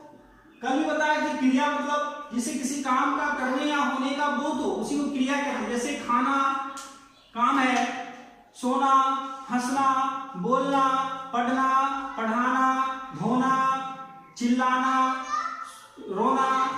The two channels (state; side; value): identical; both; correlation 1.00